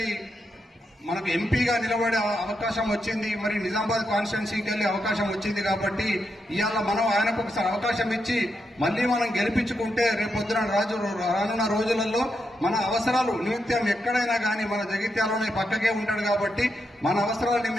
మనకు ఎంపీగా నిలబడే అవకాశం వచ్చింది, మరి నిజామాబాద్ కాన్స్టిట్యున్సీకి వెళ్లే అవకాశం వచ్చింది కాబట్టి ఇవాళ మనం ఆయనకు ఒకసారి అవకాశం ఇచ్చి మళ్ళీ మనం గెలిపించుకుంటే రేపొద్దున రానున్న రోజులలో మన అవసరాలు నిమిత్తం ఎక్కడైనా కానీ మన జగిత్యాలలోనే పక్కకే ఉంటాడు కాబట్టి మన అవసరాల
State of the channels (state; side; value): normal; both; correlation 0.83